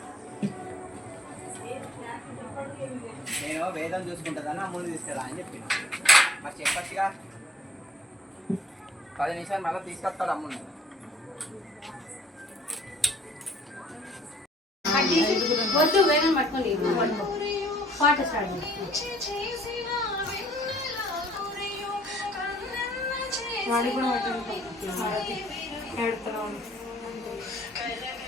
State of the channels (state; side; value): normal; both; correlation 0.58